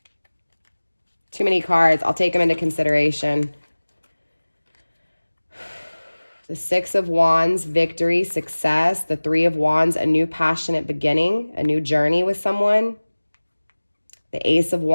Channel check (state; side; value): inverted; both; correlation -1.00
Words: Too many cards. I'll take them into consideration. The 6 of Wands, victory, success. The 3 of Wands, a new passionate beginning, a new journey with someone. The Ace of